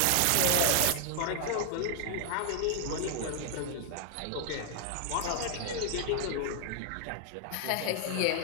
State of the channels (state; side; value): different; both; correlation 0.00